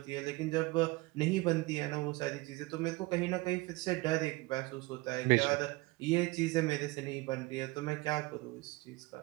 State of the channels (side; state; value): left; quieter; 22.7 dB